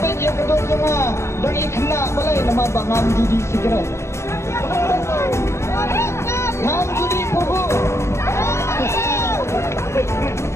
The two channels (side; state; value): right; late; 0.13 ms